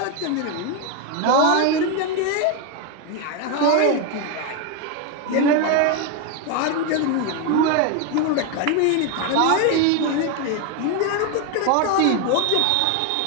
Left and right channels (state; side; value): different; both; correlation 0.01